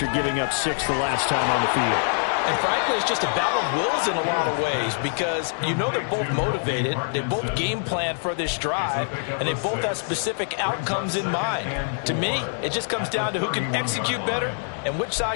giving up 6 the last time on the field. And frankly, it's just a battle of wills in a lot of ways because you know they're both motivated. They both game plan for this drive, and they both have specific outcomes in mind. To me, it just comes down to who can execute better and which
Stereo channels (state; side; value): silent; right; digital silence